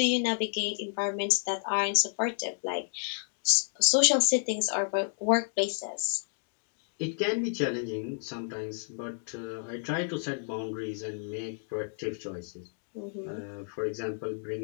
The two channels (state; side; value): silent; right; digital silence